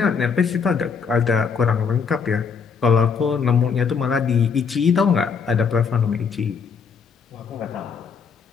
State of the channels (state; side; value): quieter; right; 6.0 dB